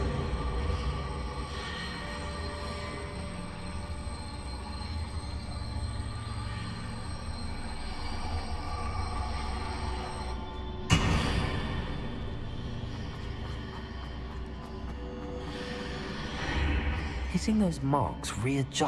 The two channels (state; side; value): identical; both; correlation 1.00